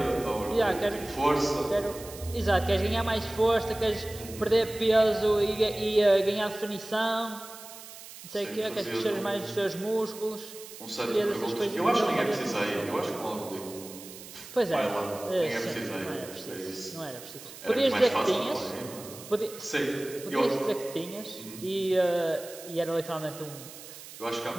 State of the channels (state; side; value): noise; right; hiss, 15 dB below the sound